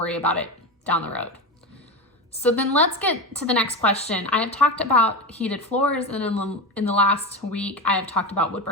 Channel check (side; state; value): both; normal; correlation 0.20